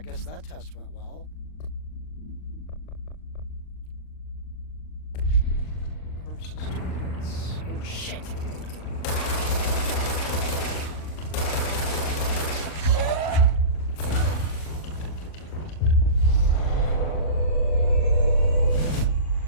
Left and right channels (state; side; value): late; right; 39 ms